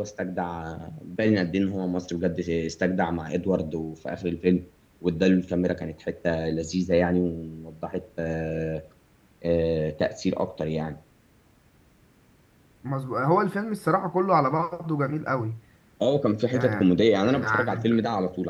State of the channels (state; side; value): identical; both; correlation 1.00